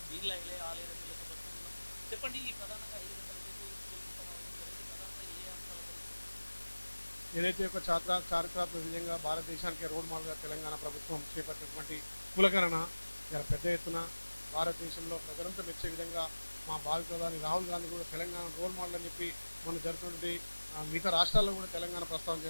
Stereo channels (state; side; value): inverted; both; correlation -1.00